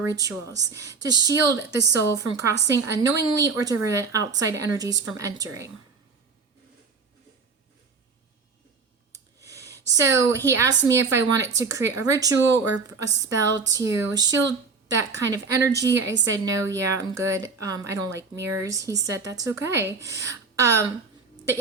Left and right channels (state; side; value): quieter; left; 4.8 dB